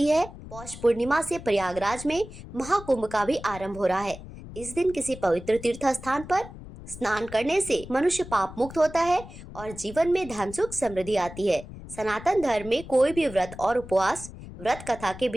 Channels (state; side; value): noise; left; rumble, 14 dB below the sound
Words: है। पौष पूर्णिमा से प्रयागराज में महाकुंभ का भी आरंभ हो रहा है। इस दिन किसी पवित्र तीर्थ स्थान पर स्नान करने से मनुष्य पाप मुक्त होता है और जीवन में धन सुख समृद्धि आती है। सनातन धर्म में कोई भी व्रत और उपवास व्रत कथा के